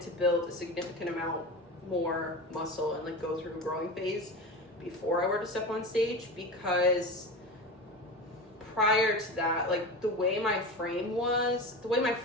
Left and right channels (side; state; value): both; normal; correlation 0.27